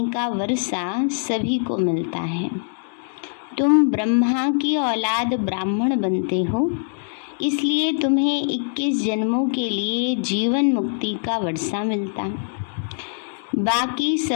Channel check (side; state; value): right; silent; digital silence